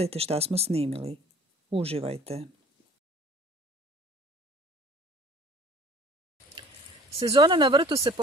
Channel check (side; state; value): both; normal; correlation 0.49